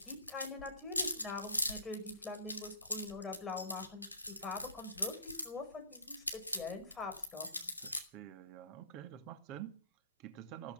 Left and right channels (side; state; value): both; inverted; correlation -0.44